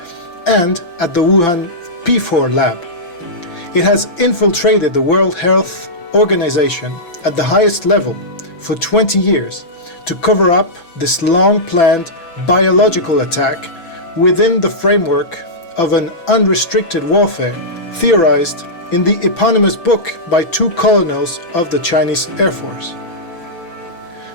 and at the Wuhan P4 lab. It has infiltrated the World Health Organization at the highest level for 20 years to cover up this long-planned biological attack within the framework of an unrestricted warfare theorized in the eponymous book by two colonels of the Chinese Air Force.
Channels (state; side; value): late; right; 6.0 ms